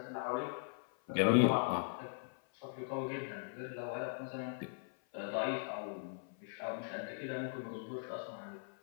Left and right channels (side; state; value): right; silent; 51 dB below the other